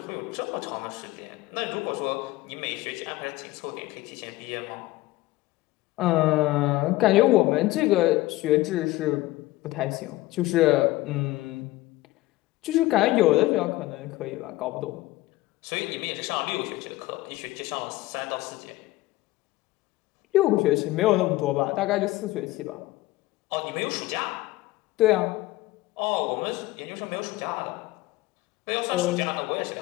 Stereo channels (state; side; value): quieter; right; 18.1 dB